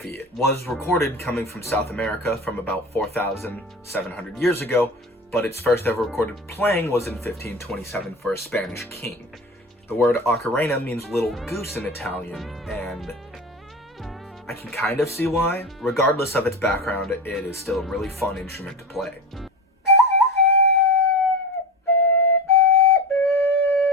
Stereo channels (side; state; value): both; normal; correlation 0.27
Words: It was recorded coming from South America from about 4,700 years ago, but its first ever recorded playing was in 1527 for a Spanish king. The word ocarina means little goose in Italian, and I can kind of see why. Regardless of its background, it is still a really fun instrument to play.